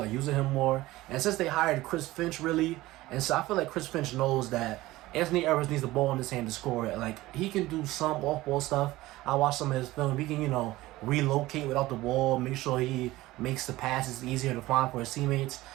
using him more, and since they hired Chris Finch really, and so I feel like Chris Finch knows that Anthony Edwards needs the ball in his hand to score it. Like, he can do some off-ball stuff. I watched some of his film. He can, relocate without the ball, make sure he makes the passes easier to find for his teammates.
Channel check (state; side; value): quieter; left; 17.9 dB